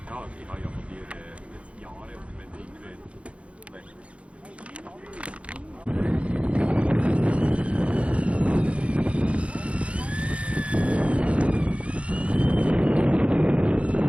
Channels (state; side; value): late; left; 0.062 ms